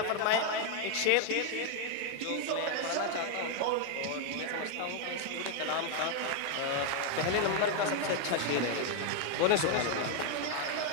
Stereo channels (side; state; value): both; different; correlation 0.00